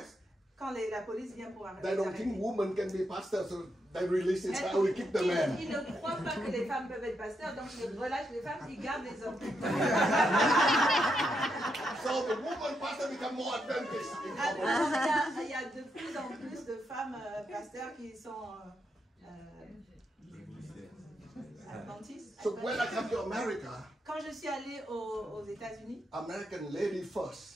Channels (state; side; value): normal; both; correlation 0.81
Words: quand la police vient pour they don't think arrêter, women can be pastors, so they release it, so we keep the men. ils ne croient pas que les femmes peuvent être pasteurs, donc ils relâchent les femmes, ils gardent les hommes. So the woman pastor become more advantaged. Alors, il y a de plus en plus de femmes pasteurs qui sont adventiste. So when I come to America, Quand je suis allée aux États-Unis, American lady